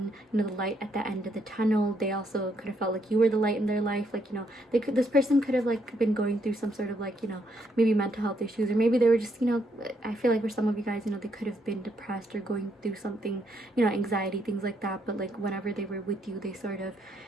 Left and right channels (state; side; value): normal; both; correlation 0.74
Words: you know, the light at the end of the tunnel. They also could have felt like you were the light in their life. Like, you know, this person could have like been going through some sort of like, you know, maybe mental health issues, or maybe they were just, you know, I feel like for some of you guys, you know, they could have been depressed or going through something, you know, anxiety, things like that. But like whenever they were with you, they sort of,